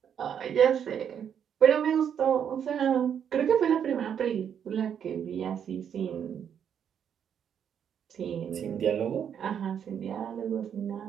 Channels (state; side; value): quieter; left; 8.4 dB